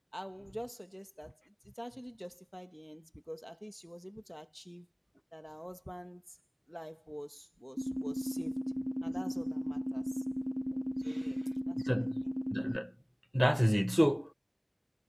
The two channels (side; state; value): both; identical; correlation 1.00